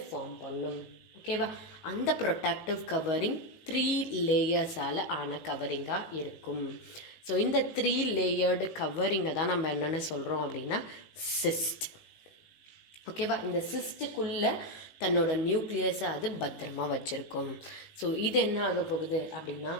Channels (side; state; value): right; late; 18 ms